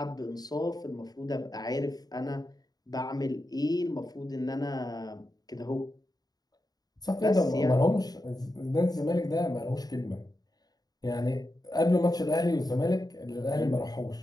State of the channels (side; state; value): right; late; 0.19 ms